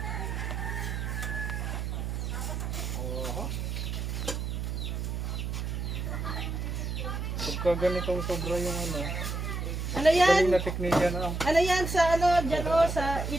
Oo. Pagka ganitong sobra yung ano. Ano yan? Na teknikya na. Ano yan sa ano, dyan o, sa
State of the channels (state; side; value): noise; right; hum, 3 dB below the sound